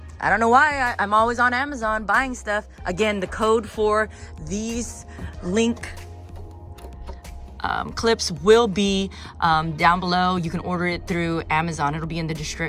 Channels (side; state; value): both; identical; correlation 1.00